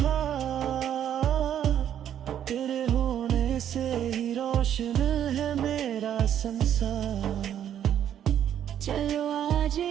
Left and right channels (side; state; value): left; quieter; 10.0 dB